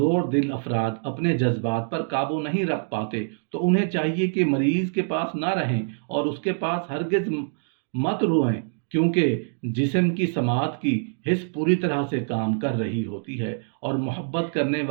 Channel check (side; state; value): left; silent; digital silence